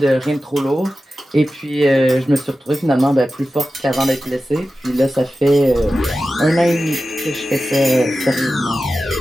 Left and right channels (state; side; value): normal; both; correlation 0.93